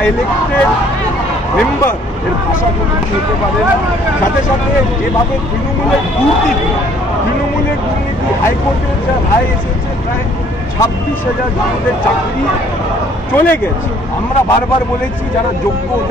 ইলেক্টেড মেম্বার এর ভাষা কোনো হতে পারে না। সাথে সাথে যেভাবে তৃণমূলের দুর্নীতি হাইকোর্টের যা রায় এসেছে, প্রায় 26,000 জনদের চাকরি চলে গেছে। আমরা বারবার বলেছি যারা যোগ্য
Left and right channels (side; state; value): both; normal; correlation 0.59